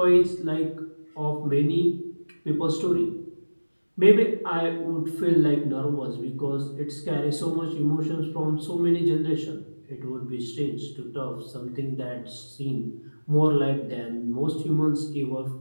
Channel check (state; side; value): inverted; both; correlation -1.00